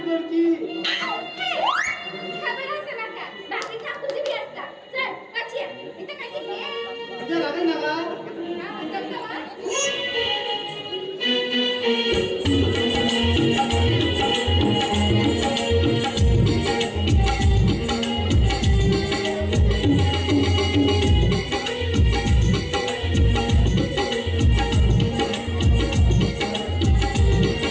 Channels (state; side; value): identical; both; correlation 1.00